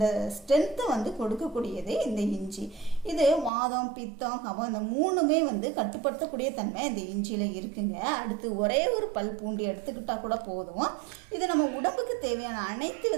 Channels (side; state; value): left; drops out; at 3.5 s